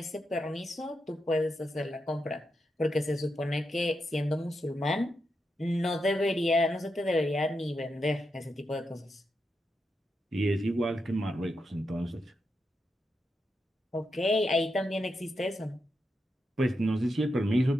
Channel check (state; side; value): normal; both; correlation 0.85